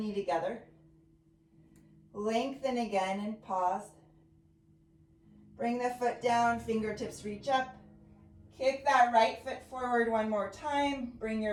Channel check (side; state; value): both; identical; correlation 1.00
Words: knee together. Lengthen again and pause. Bring the foot down, fingertips reach up. Kick that right foot forward one more time. Bring